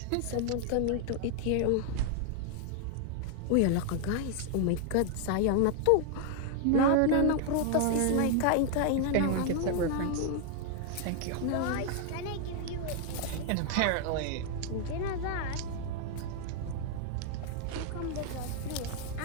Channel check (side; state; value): both; different; correlation 0.00